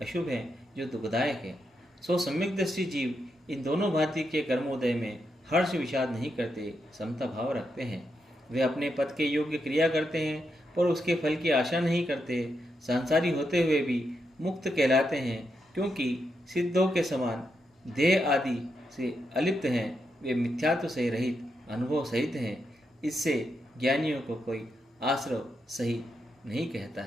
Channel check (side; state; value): both; normal; correlation 0.83